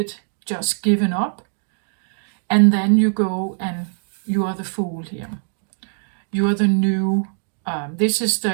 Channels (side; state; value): left; silent; digital silence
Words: just given up, and then you go and you are the Fool here. You are the new. This is